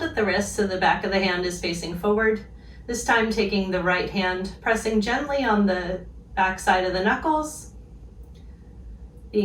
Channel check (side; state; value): both; identical; correlation 1.00